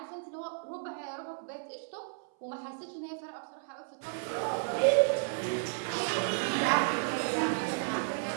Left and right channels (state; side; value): silent; left; 56 dB below the other